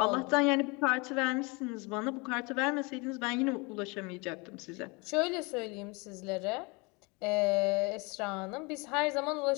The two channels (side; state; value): right; quieter; 28.2 dB